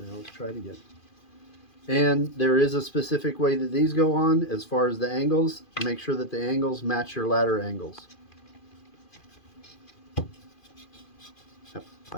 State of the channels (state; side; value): late; right; 2.4 ms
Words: now let's try it again. And there is a specific way that these go on as far as the angles. Make sure that the angles match your ladder angles. Yep,